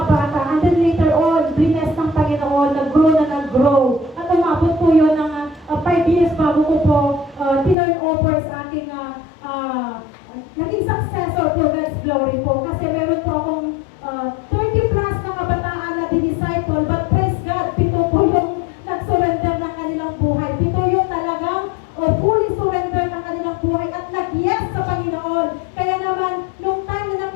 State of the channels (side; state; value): right; drops out; at 7.8 s